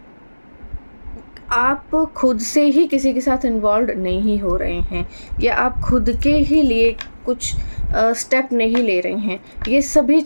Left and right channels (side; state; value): both; inverted; correlation -1.00